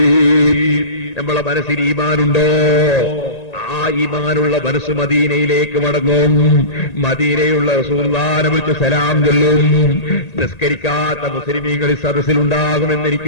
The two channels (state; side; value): late; right; 1.8 ms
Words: നമ്മളെ മനസ്സിൽ ഈമാനുണ്ടോ? ആ ഈമാനുള്ള മനസ്സ് മദീനയിലേക്ക് മടങ്ങും. മദീനയുള്ള റസൂലുള്ളാഹിനെ വിളിച്ച് സലാം ചൊല്ലും. നിസ്കരിക്കാത്ത മുസ്ലിമീങ്ങൾ ഈ സദസ്സിലുണ്ടാകുമെന്ന്